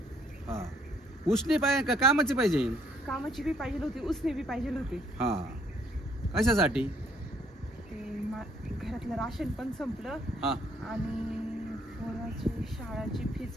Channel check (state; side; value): normal; both; correlation 0.66